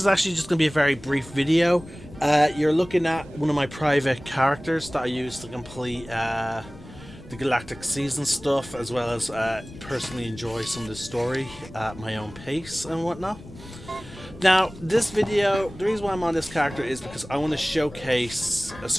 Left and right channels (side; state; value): left; noise; rumble, 20 dB below the sound